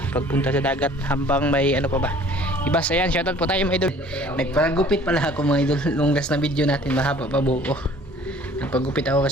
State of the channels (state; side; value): normal; both; correlation 0.52